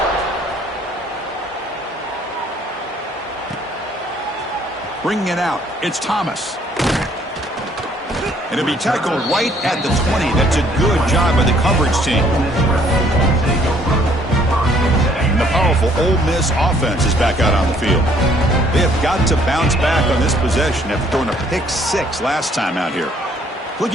Bringing it out, it's Thomas. And it'll be tackled right at the 20. That's a good job by the coverage team. And the powerful Ole Miss offense is back out on the field. They have got to bounce back on this possession after throwing a pick 6 last time out here.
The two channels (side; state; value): both; normal; correlation 0.63